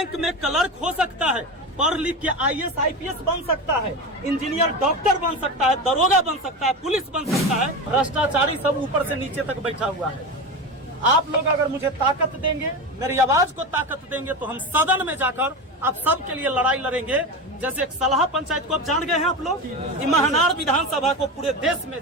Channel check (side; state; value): both; normal; correlation 0.23